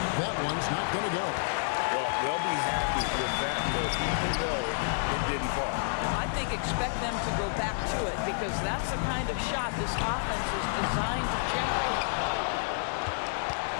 That one's not going to go. Well, they'll be happy with that look, even though it didn't fall. I think expect them to go back to it because that's the kind of shot this offense is designed to generate.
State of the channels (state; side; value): silent; right; 58 dB below the other